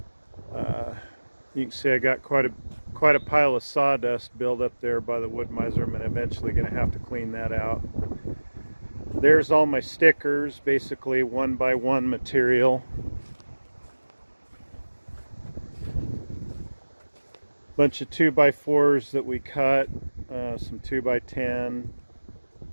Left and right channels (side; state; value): both; inverted; correlation -1.00